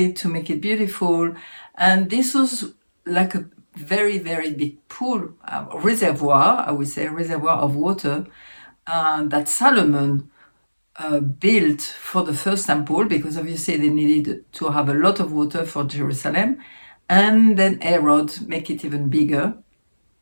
to make it beautiful. And this was like a very, very big pool, reservoir, I would say, reservoir of water that Solomon built for the first temple, because obviously they needed to have a lot of water for Jerusalem. And then Herod make it even bigger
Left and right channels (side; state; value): both; inverted; correlation -1.00